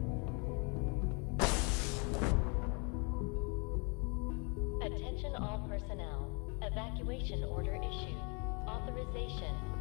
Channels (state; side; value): quieter; right; 34.2 dB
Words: Attention all personnel. Evacuation order issued. Authorization